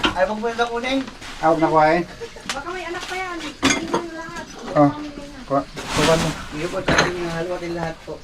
Ay, pag pwede kunin. Huwag na kuhain. Baka may anak pa yan. Hindi mo lahat. Oh. Kuha mo. Hindi po, tsaka yung haluatin lahat po.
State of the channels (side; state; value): both; identical; correlation 1.00